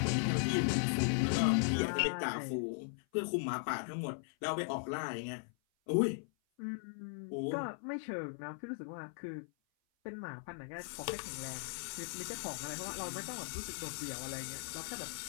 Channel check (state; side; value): silent; right; 52 dB below the other